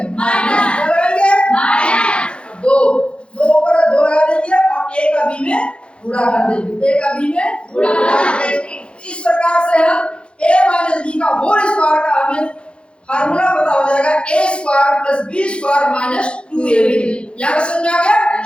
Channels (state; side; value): late; right; 0.057 ms